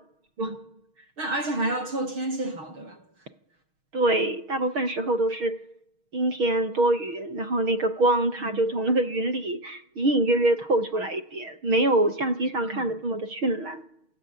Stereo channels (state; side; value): late; left; 6.4 ms